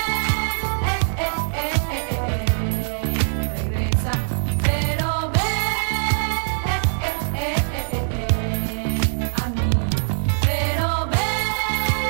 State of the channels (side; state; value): left; silent; digital silence